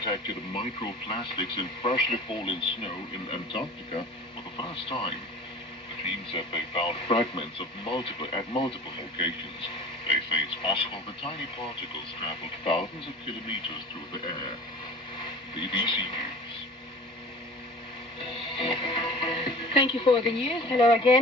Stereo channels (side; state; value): both; normal; correlation 0.41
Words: microplastics in freshly fallen snow in Antarctica for the first time. The team said they found fragments at multiple locations. They say it's possible the tiny particles traveled thousands of kilometers through the air. BBC News. Thank you for the news. Hello